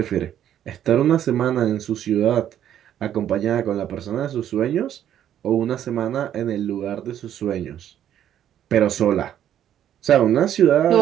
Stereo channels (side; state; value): left; quieter; 10.7 dB